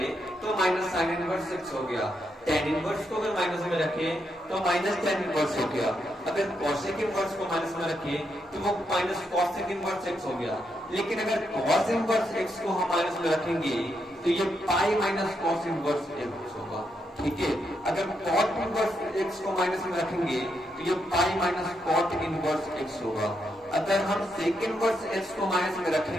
तो माइनस साइन इनवर्स एक्स हो गया। टेन इनवर्स को अगर माइनस में रखे तो माइनस टेन इनवर्स हो गया। अगर कॉसेक इनवर्स को माइनस में रखे तो वो माइनस कॉसेक इनवर्स एक्स हो गया। लेकिन अगर कॉस इनवर्स एक्स को हम माइनस में रखेंगे तो ये pi minus cos inverse x होगा, ठीक है। अगर कॉट इनवर्स एक्स को माइनस में रखेंगे तो ये pi minus cot inverse x होगा। अगर हम सेक इनवर्स एक्स को माइनस में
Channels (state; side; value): normal; both; correlation 0.81